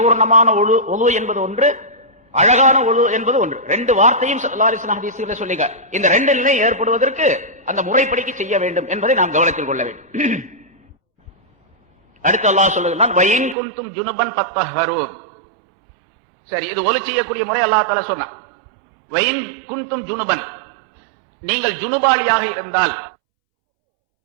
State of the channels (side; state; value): left; drops out; at 13.6 s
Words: ஒலு என்பது ஒன்று, அழகான ஒலு என்பது ஒன்று. 2 வார்த்தையும் ஸல்லல்லாஹு அலைஹி வஸல்லம் ஹதீஸ்ல சொல்லிங்க. இந்த 2 நிலை ஏற்படுவதற்கு அந்த முறைப்படிக்கு செய்ய வேண்டும் என்பதை நாம் கவனத்தில் கொள்ள வேண்டும். அடுத்து அல்லாஹ் சொல்லுகிறான் வயின் குன்தும் ஜுனுபன் ஃபத்தஹரு. சரி, இது ஒலி செய்யக்கூடிய முறை அல்லாஹ் தஆலா சொன்னான். வயின் குன்தும் ஜுனுபன், நீங்கள் ஜுனுபாலியாக இருந்தால்,